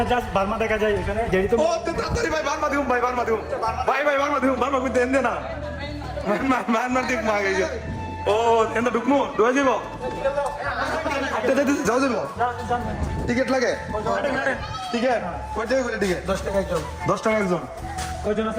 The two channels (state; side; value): identical; both; correlation 1.00